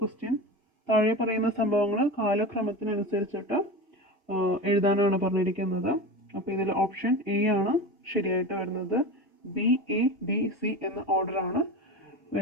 ക്വസ്റ്റ്യൻ താഴെ പറയുന്ന സംഭവങ്ങൾ കാലക്രമത്തിനനുസരിച്ചിട്ട് എഴുതാനാണ് പറഞ്ഞിരിക്കുന്നത്. അപ്പോൾ ഇതിൽ ഓപ്ഷൻ എ ആണ് ശരിയായിട്ട് വരുന്നത്. ബി, എ, ഡി, സി എന്ന ഓർഡറാണ്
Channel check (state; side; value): normal; both; correlation 0.27